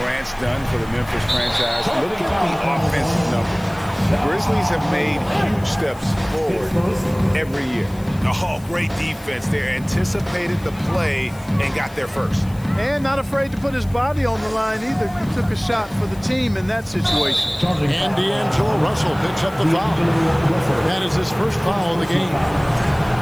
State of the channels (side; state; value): left; noise; hiss, 24 dB below the sound